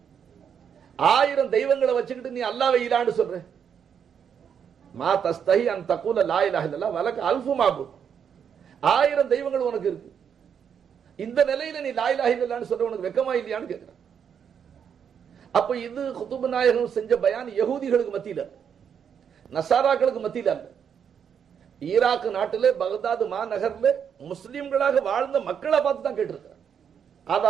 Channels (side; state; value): left; quieter; 7.7 dB